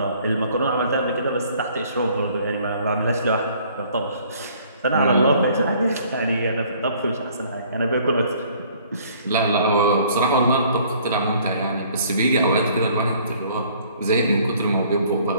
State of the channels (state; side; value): inverted; both; correlation -0.58